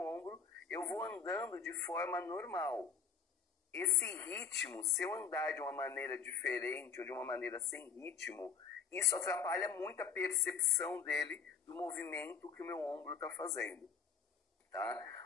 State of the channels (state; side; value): quieter; right; 6.2 dB